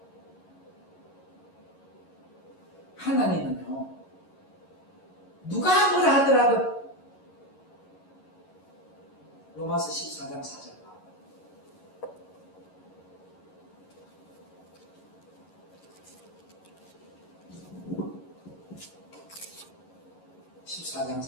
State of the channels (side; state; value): right; late; 11 ms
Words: 하나님은요, 누가 뭐라 하더라도 로마서 14장 4절 14장